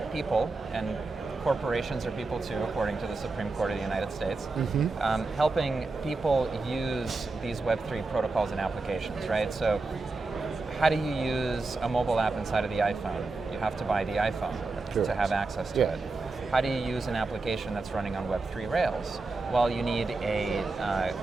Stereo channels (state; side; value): quieter; left; 3.6 dB